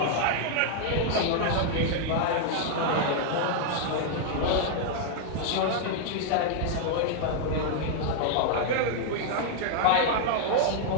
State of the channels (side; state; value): both; different; correlation 0.00